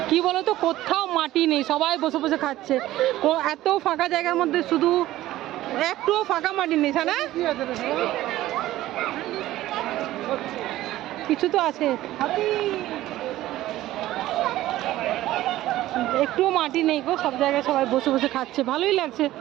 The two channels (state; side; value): quieter; left; 15.3 dB